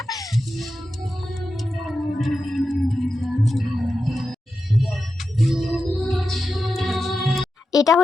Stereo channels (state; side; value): normal; both; correlation 0.90